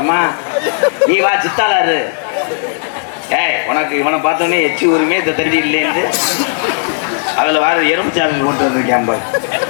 நீ வா சித்தாளாரு ஏய் உனக்கு இவனை பார்த்தோன்னே எச்சி ஊருமே இந்த தண்ணி இல்லைன்னு அதுல வர எறும்புச்சாலை கொண்டு வந்திருக்கேன்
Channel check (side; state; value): right; silent; digital silence